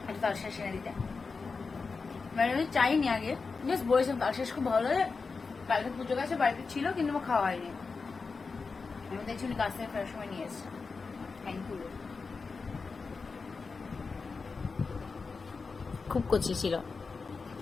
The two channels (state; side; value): quieter; right; 4.6 dB